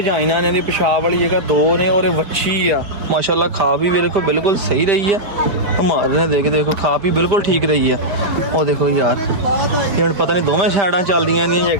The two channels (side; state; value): left; late; 5.1 ms